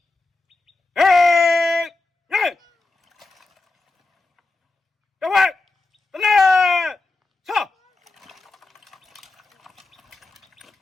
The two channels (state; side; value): quieter; right; 3.4 dB